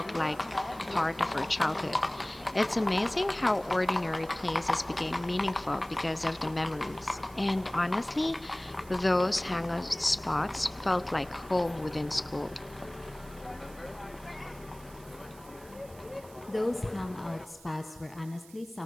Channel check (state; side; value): noise; right; hiss, 22 dB below the sound